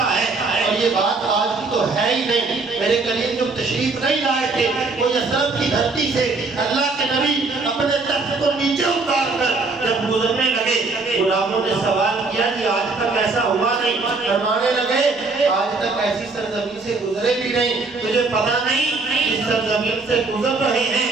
ہے اور یہ بات آج کی تو ہے ہی نہیں میرے کریم جو تشریف نہیں لائے تھے وہ یثرب کی دھرتی سے اللہ کے نبی اپنے تخت کو نیچے اتار کر جب گزرنے لگے غلاموں نے سوال کیا کہ آج تک ایسا ہوا نہیں فرمانے لگے آج تک ایسی سرزمین سے گزرے بھی نہیں تجھے پتا نہیں اس سرزمین سے گزر رہے ہیں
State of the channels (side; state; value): left; quieter; 3.8 dB